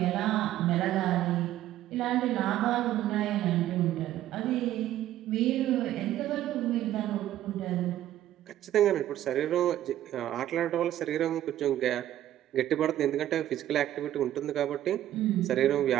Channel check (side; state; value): left; quieter; 12.8 dB